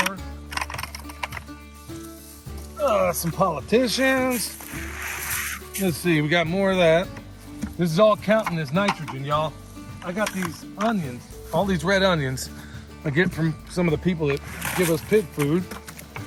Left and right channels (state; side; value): identical; both; correlation 1.00